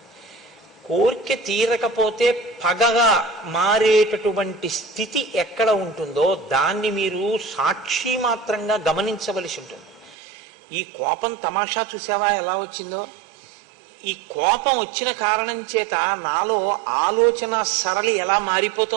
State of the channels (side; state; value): left; drops out; at 10.2 s